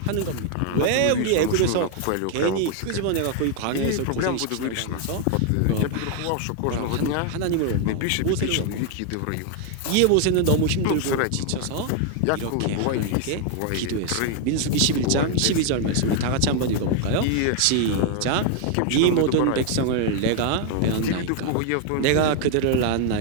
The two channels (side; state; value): both; different; correlation 0.00